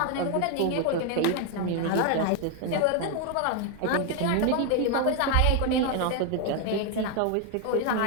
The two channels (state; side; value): different; both; correlation 0.01